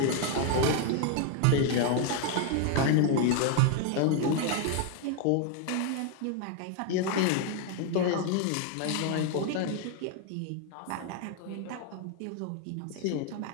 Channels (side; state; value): both; different; correlation 0.01